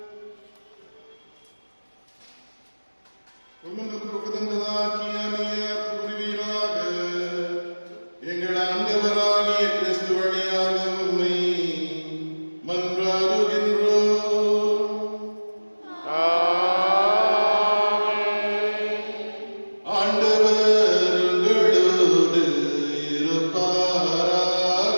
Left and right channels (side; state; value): both; inverted; correlation -1.00